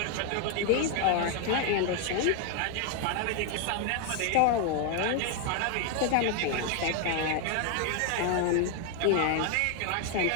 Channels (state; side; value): different; both; correlation 0.01